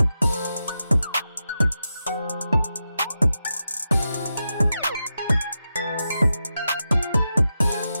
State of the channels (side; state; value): both; inverted; correlation -0.90